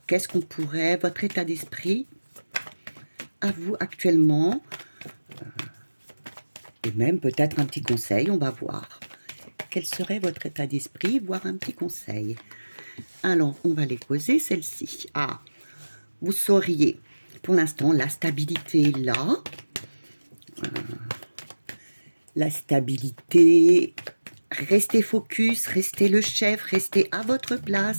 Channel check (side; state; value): both; inverted; correlation -1.00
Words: qu'est-ce qu'on pourrait, votre état d'esprit à vous actuellement, et même peut-être un petit conseil, on va voir. Quel serait votre état d'esprit, voire un petit conseil. Alors, on va les poser, celle-ci. Ah, vous sauriez, pour l'instant, la stabilité est là. La stabilité, restez focus, restez le chef, restez à votre